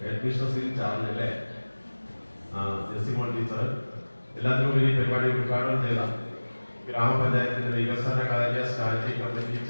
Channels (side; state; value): both; inverted; correlation -1.00